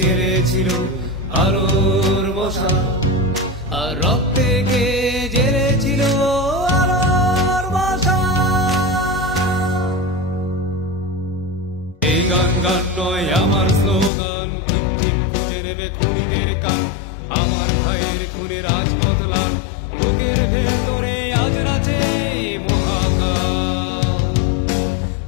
আলোর মশাল, আর রক্তে কে জেলেছিল আলোর মশাল। এই গান গান নয় আমার স্লোগান, ঠিক ঠিক খুঁজে নেবে খুনিদের কান। আমার ভাইয়ের খুনে রাজপথ লাল, বুকের ভেতরে আজ নাচে মহাকাল,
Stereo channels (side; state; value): right; drops out; at 14.1 s